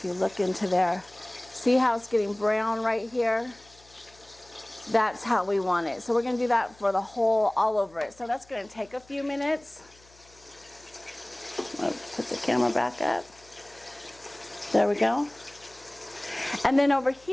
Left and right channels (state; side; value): noise; left; hum, 27 dB below the sound